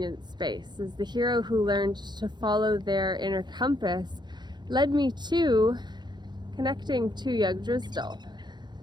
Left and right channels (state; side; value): late; left; 0.21 ms